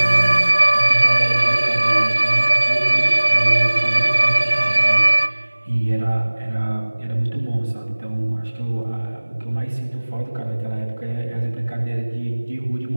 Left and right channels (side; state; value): both; inverted; correlation -1.00